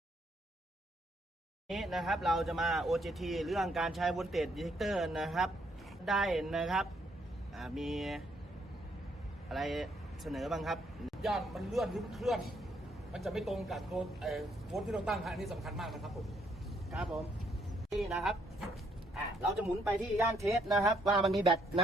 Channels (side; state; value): both; normal; correlation 0.71